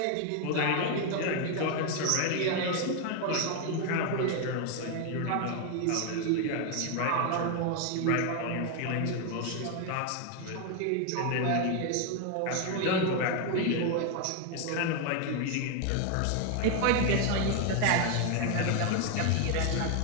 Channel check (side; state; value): both; different; correlation 0.01